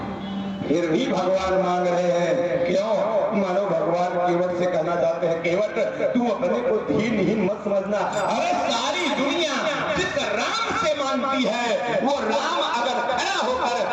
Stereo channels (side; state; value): both; identical; correlation 1.00